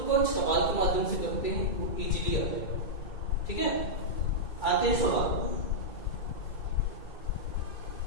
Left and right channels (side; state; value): right; late; 2.3 ms